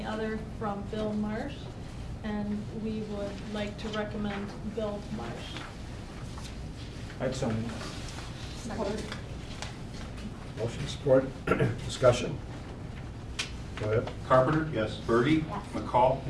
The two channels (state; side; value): identical; both; correlation 1.00